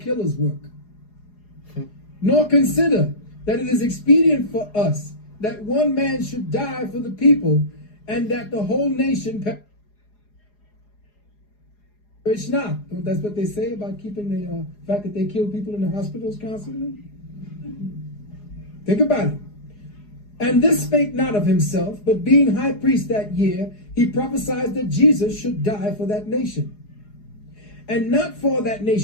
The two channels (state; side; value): late; right; 4.8 ms